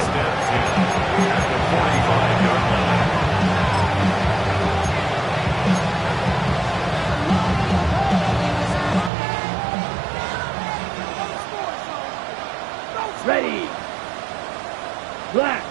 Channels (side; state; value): left; drops out; at 9.1 s